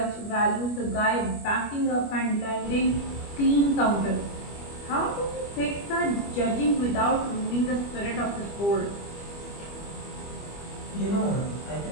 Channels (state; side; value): late; right; 25 ms